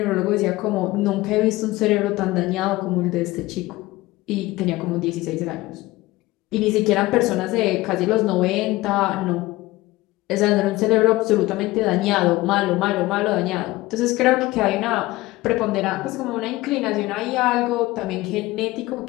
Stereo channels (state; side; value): quieter; right; 18.9 dB